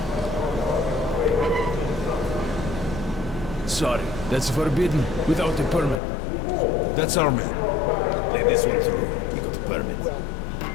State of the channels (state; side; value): drops out; right; at 6.0 s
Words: Sorry, that's forbidden without a permit. That's our man. Let this one through. He got a permit.